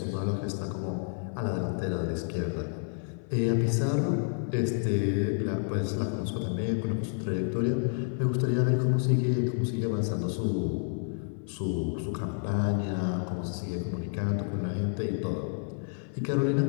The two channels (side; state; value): right; silent; 58 dB below the other